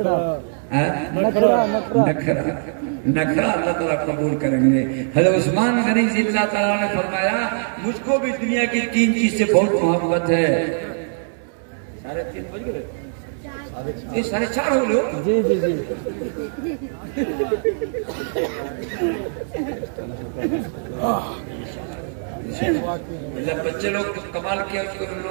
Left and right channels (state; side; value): silent; left; digital silence